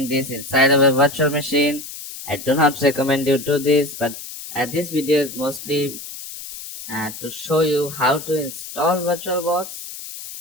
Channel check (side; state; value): left; noise; hiss, 11 dB below the sound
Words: this inside of a virtual machine. I do not recommend you do this, but this video is mostly to show you how to install VirtualBox